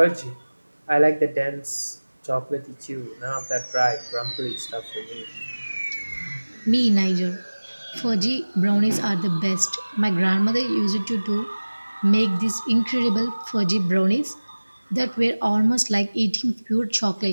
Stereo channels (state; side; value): inverted; both; correlation -1.00